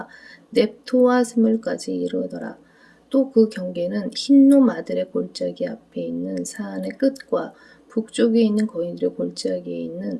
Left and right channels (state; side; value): identical; both; correlation 1.00